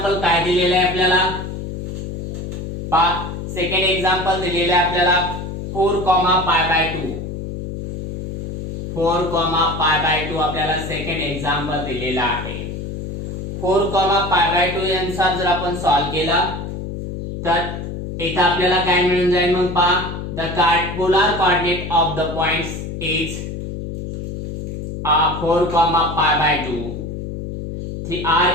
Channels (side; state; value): left; noise; hum, 7 dB below the sound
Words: काय दिलेलं आहे आपल्याला, सेकंड एक्झाम्पल दिलेलं आहे आपल्याला 4, π/2. 4, π/2 आपल्याला सेकंड एक्झाम्पल दिलेला आहे. 4, π/2 अनुसार जर आपण सॉल्व केला तर इथे आपल्याला काय मिळून जाईल, मग पहा the polar coordinate of the points is 4, π/2.